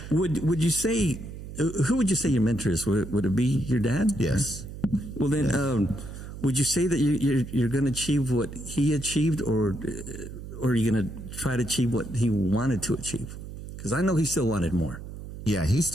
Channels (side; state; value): right; noise; hum, 11 dB below the sound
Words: Would you say, who would you say your mentor is? Would it be your dad? Yes. Well, then, would you say that you're going to achieve what he achieved, or are you going to try to achieve what he wanted to achieve? Because I know he still wanted more. Yeah, he